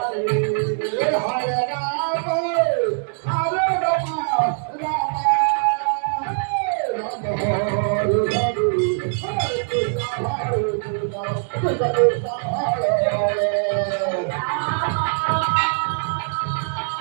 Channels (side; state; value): left; silent; digital silence